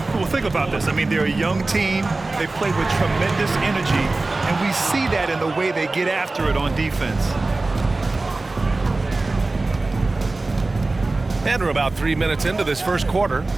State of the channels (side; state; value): left; quieter; 3.2 dB